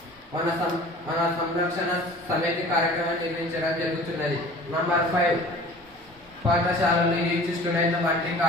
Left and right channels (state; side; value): normal; both; correlation 0.44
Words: మన సంరక్షణ సమితి కార్యక్రమం నిర్వహించడం జరుగుతున్నది. నంబర్ 5 పాఠశాలలు యూత్ స్టూడెంట్ల వంటి